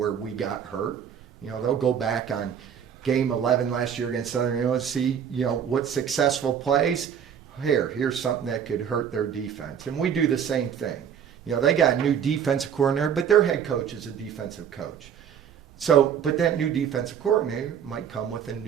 we got hurt. They'll go back on game 11 last year against Southern Illinois, see, what successful plays. Here's something that could hurt their defense. And we do the same thing. They got a new defensive coordinator, but their head coach is a defensive coach. So, but that new defensive coordinator might come with a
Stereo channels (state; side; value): quieter; left; 8.2 dB